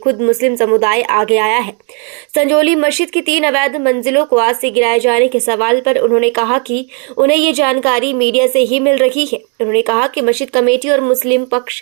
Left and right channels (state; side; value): quieter; left; 36.2 dB